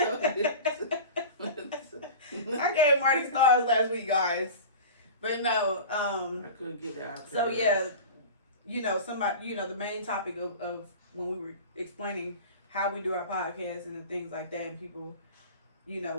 you. I gave Marty stars last week, guys. But no, I couldn't get the iPad so right. yeah, the main topic of when we were explaining how we do our podcast and the things like that, and people,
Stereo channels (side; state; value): both; inverted; correlation -0.34